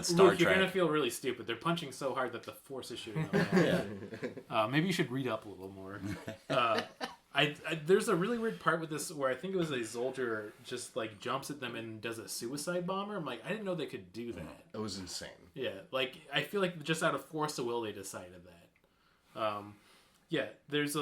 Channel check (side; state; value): both; identical; correlation 1.00